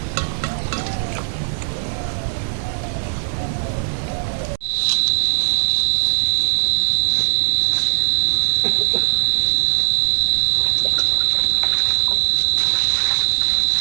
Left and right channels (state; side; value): silent; left; digital silence